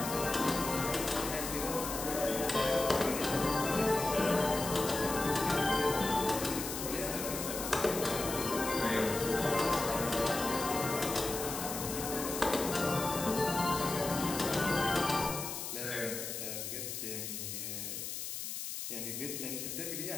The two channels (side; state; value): left; noise; hiss, 5 dB below the sound